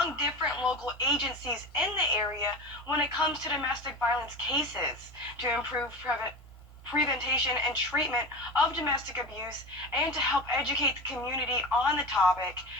different local agencies in the area when it comes to domestic violence cases to improve prevention and treatment of domestic abuse, and to help educate the community on the topic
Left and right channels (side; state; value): both; normal; correlation 0.28